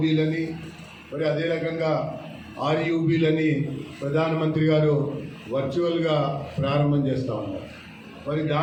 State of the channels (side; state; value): both; identical; correlation 1.00